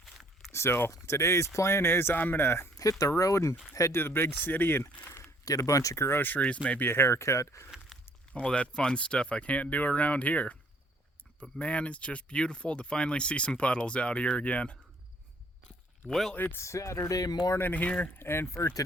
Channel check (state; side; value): normal; both; correlation 0.61